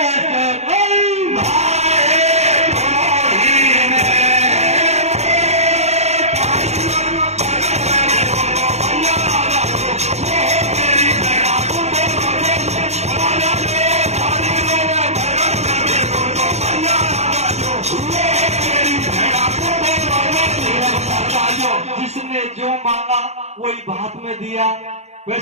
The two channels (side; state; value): left; late; 0.32 ms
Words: जिसने जो मांगा वही भात में दिया।